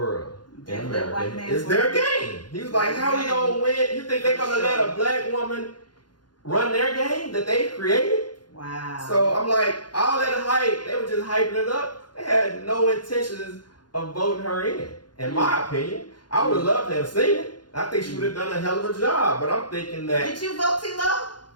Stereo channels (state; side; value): late; right; 0.71 ms